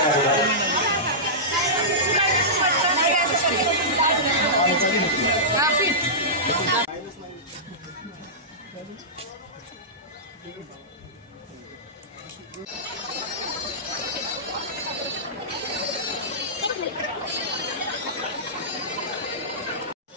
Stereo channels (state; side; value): normal; both; correlation -0.16